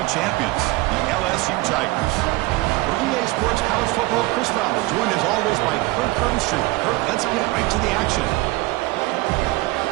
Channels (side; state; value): left; quieter; 21.2 dB